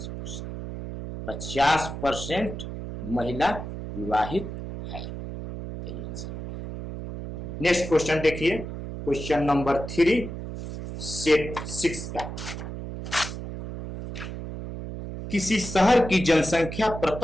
50% महिला विवाहित है, यही आंसर हो गया। नेक्स्ट क्वेश्चन देखिए, क्वेश्चन नंबर 3 सेट 6 का। किसी शहर की जनसंख्या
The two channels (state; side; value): noise; right; hum, 8 dB below the sound